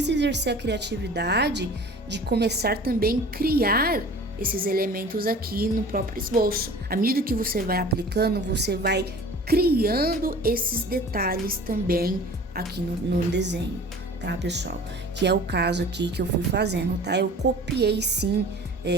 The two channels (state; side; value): normal; both; correlation 0.43